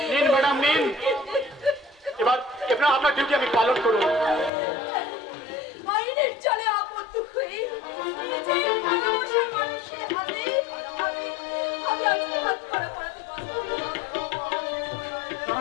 নিন ম্যাডাম নিন, এবার এবার আপনার ডিউটি আমি পালন করুন। আইনের চলে আবদ্ধ হয়ে নিজের ভালোবাসার মানুষের হাতে আমি আজকে হাত করা পড়াতে পারবো না।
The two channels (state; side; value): drops out; right; at 4.5 s